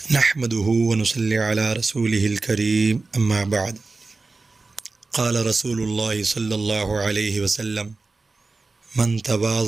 نحمده ونصلي على رسوله الكريم اما بعد قال رسول الله صلی اللہ علیہ وسلم من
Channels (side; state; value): left; quieter; 3.7 dB